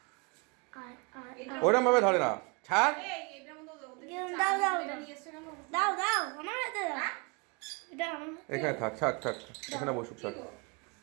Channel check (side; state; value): left; quieter; 31.2 dB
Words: ওরম ভাবে ধরে না ছাড় এই এটার মধ্যে ওদের দাও, দাও, এটা দাও। নিয়ে এসেছে কেন? দাও দাও আমার হাতে দাও এটা আমার হাতে এখানে থাক ছাড় ছাড় এখানে বসুক ছাড়